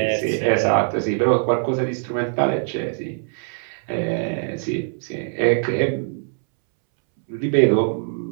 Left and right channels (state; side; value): silent; left; 64 dB below the other